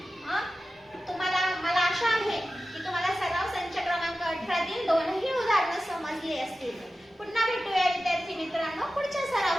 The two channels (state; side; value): normal; both; correlation 0.94